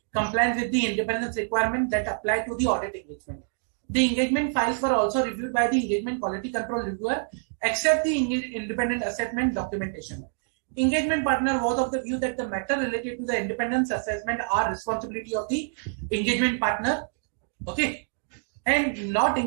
compliance with the independence requirement that apply to the audit engagement. The engagement files were also reviewed by the engagement quality control reviewer, except the independent assessment documentation. Engagement partner was of the view that the matter related to the independence assessment are responsibility of the engagement partner, okay, and not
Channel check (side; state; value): left; silent; digital silence